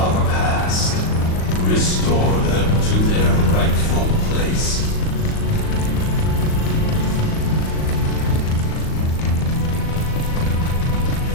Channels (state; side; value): late; right; 38 ms